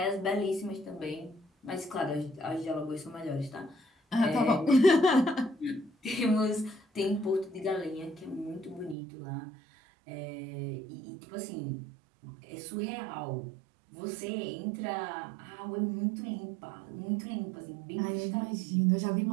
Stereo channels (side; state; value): left; drops out; at 9.0 s